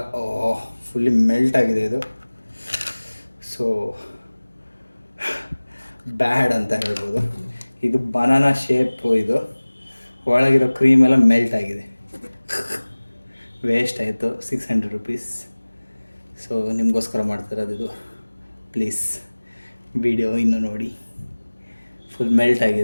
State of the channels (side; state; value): both; inverted; correlation -1.00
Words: ಫುಲ್ಲಿ ಮೆಲ್ಟ್ ಆಗಿದೆ ಇದು. ಸೊ ಬ್ಯಾಡ್ ಅಂತ ಹೇಳ್ಬೋದು. ಇದು ಬನಾನಾ ಶೇಪು. ಇದು ಒಳಗಿರೋ ಕ್ರೀಮ್ ಎಲ್ಲ ಮೆಲ್ಟ್ ಆಗಿದೆ. ವೇಸ್ಟ್ ಆಯಿತು 600 ರೂಪೀಸ್. ಸೊ ನಿಮಗೋಸ್ಕರ ಮಾಡ್ತಿರೋದು ಇದು. ಪ್ಲೀಸ್ ವಿಡಿಯೋ ಇನ್ನೂ ನೋಡಿ. ಫುಲ್ ಮೆಲ್ಟ್